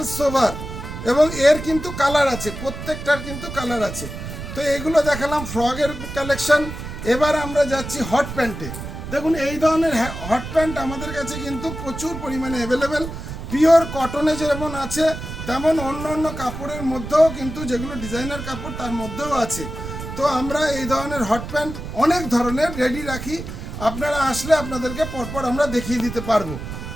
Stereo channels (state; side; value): noise; right; rumble, 8 dB below the sound